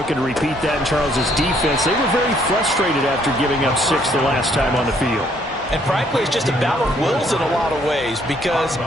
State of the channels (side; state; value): both; normal; correlation 0.66